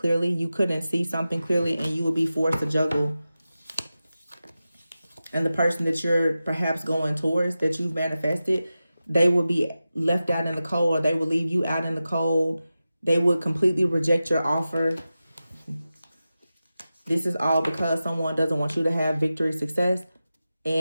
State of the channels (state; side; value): inverted; both; correlation -0.93